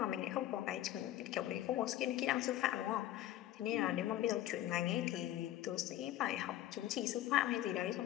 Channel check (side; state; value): right; quieter; 13.6 dB